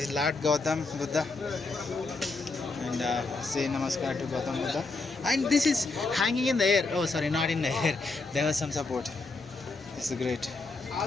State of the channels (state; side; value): quieter; right; 3.7 dB